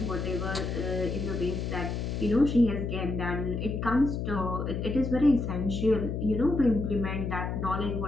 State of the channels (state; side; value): noise; left; hum, 3 dB below the sound